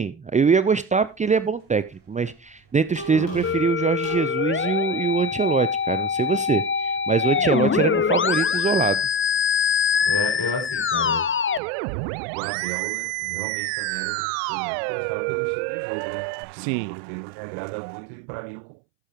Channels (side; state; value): left; drops out; at 11.6 s